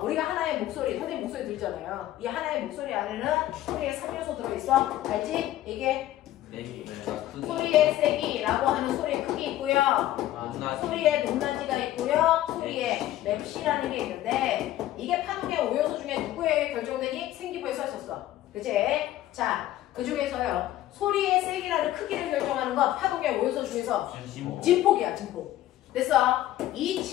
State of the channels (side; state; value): right; quieter; 14.0 dB